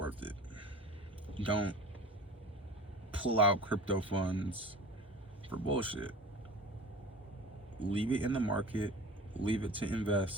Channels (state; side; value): normal; both; correlation 0.38